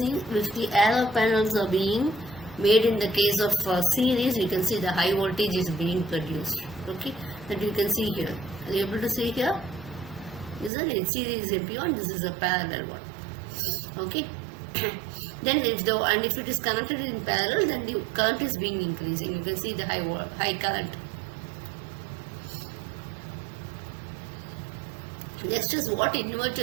if the arrow panels are being made in the case of series, you can see the high voltage is being produced. Okay, that you can see here. Are you able to see here? Isn't it? Series MP1, this is a parallel one. Okay. Then if it is connected in parallel, then the current is being increasing. You can see the high current. Next is what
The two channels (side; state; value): left; drops out; at 10.7 s